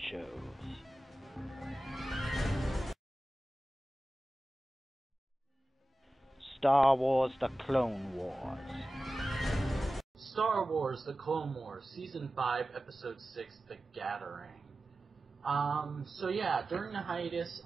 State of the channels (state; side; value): normal; both; correlation 0.95